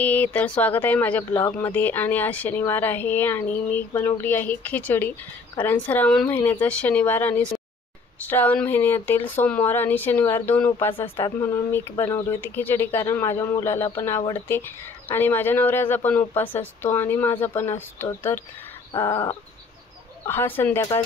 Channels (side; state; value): right; quieter; 4.3 dB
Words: तर स्वागत आहे माझ्या ब्लॉगमध्ये। आणि आज शनिवार आहे आणि मी बनवली आहे खिचडी, कारण श्रावण महिन्याचा शनिवार आणि श्रावण महिन्यातील सोमवार आणि शनिवार दोन उपवास असतात, म्हणून मी बनवली होती खिचडी। कारण माझ्या मुलाला पण आवडते आणि माझ्या नवऱ्याचा पण उपवास असतो आणि माझा पण असतो। तर हा